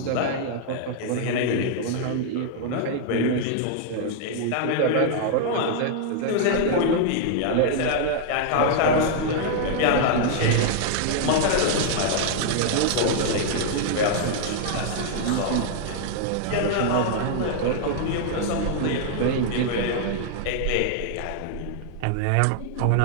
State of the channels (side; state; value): both; different; correlation -0.01